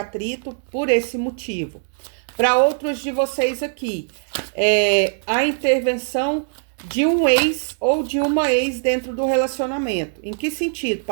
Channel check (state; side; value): silent; left; digital silence